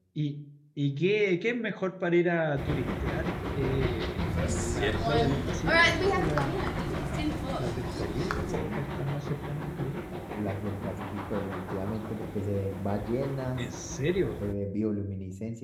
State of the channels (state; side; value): identical; both; correlation 1.00